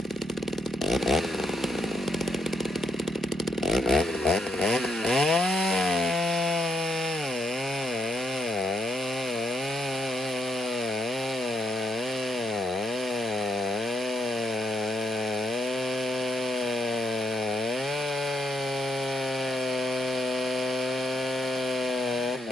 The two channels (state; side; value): normal; both; correlation 0.76